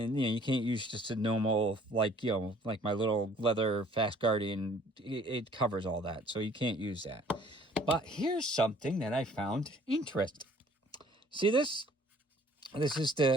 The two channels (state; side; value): normal; both; correlation 0.56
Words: you can't use just a normal, like my little leather Fast Guardian. It covers all that, so you can't use that. But here's something that I found interesting. See this? This is